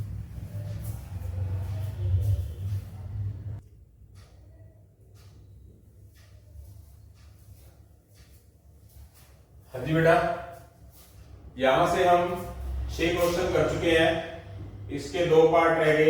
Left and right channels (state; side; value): identical; both; correlation 1.00